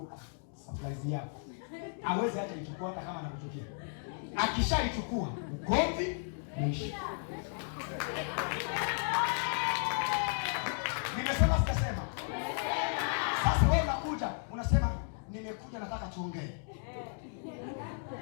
surprise yako. Hawezi hata ichukua hata kama anakuchukia. Akishaichukua, ugomvi umeisha. Nimesema sikasema? Sasa wewe unakuja, unasema nimekuja nataka tuongee.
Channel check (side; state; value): right; silent; 55 dB below the other